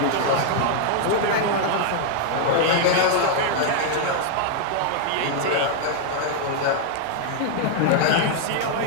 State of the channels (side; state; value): both; different; correlation 0.00